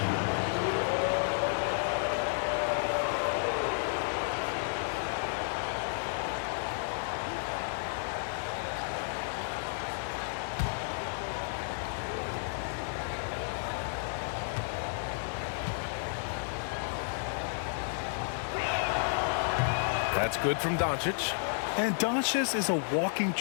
That's good from Doncic. And Doncic is a walking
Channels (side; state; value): right; silent; digital silence